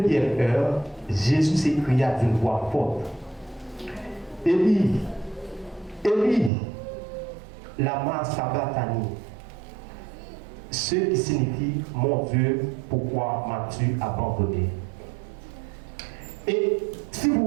heure, Jésus s'écria d'une voix forte, Élie, Élie, lama sabachthani, ce qui signifie mon Dieu, pourquoi m'as-tu abandonné? Et si vous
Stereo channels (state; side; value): drops out; left; at 6.5 s